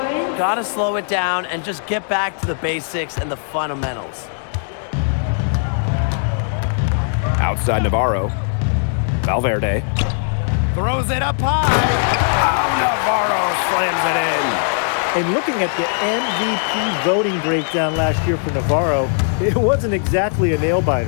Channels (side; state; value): right; silent; digital silence